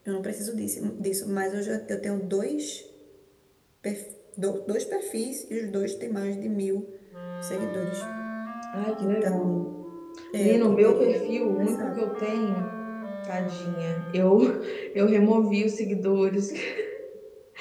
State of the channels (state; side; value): identical; both; correlation 1.00